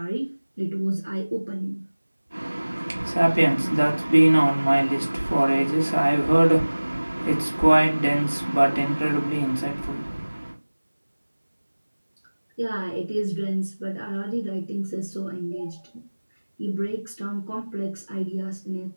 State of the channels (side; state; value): both; inverted; correlation -1.00